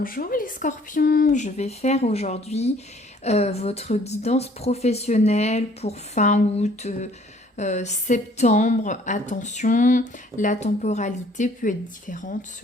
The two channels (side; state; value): both; normal; correlation 0.57